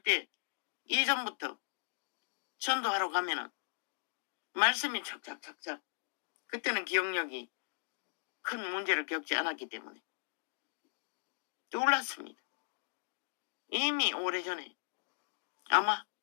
때 이전부터 전도하러 가면은 말씀이 착착착착 그때는 기억력이 큰 문제를 겪지 않았기 때문에 놀랐습니다. 이미 오래전에 아마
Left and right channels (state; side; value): silent; right; digital silence